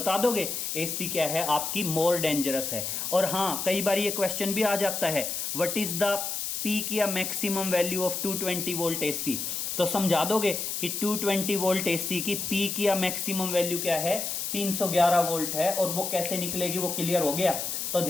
दोगे AC क्या है आपकी, मोर डेंजरस है। और हाँ कई बार ये क्वेश्चन भी आ जाता है, व्हाट इज द पीक या maximum value of 220 volt AC, तो समझा दोगे कि 220 वोल्ट AC की पीक या मैक्सिमम वैल्यू क्या है, 311 वोल्ट है। और वो कैसे निकलेगी वो क्लियर हो गया। तो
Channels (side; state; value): left; noise; hiss, 3 dB below the sound